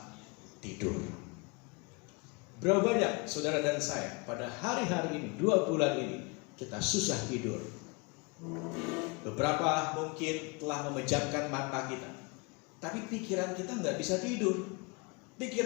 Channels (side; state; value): right; quieter; 29.7 dB